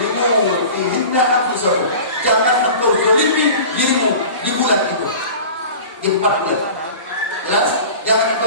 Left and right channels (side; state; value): both; inverted; correlation -0.38